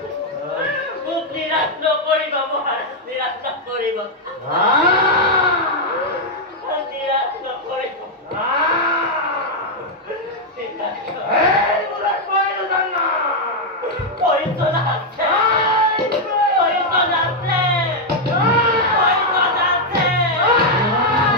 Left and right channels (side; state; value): both; normal; correlation -0.01